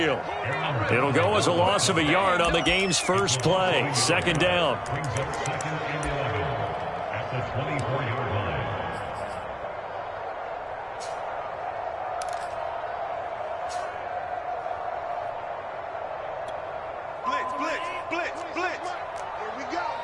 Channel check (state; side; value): identical; both; correlation 1.00